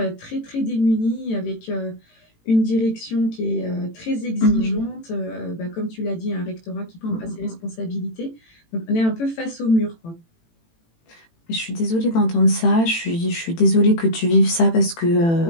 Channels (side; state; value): right; late; 18 ms